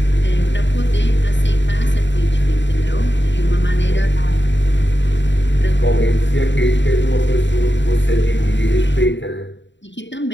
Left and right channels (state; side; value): late; right; 0.53 ms